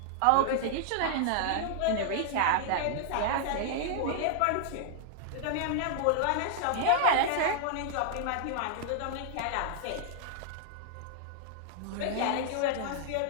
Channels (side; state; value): both; different; correlation -0.01